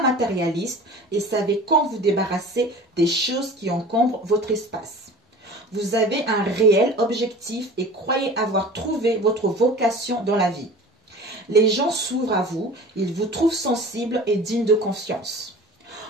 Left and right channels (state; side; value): normal; both; correlation 0.40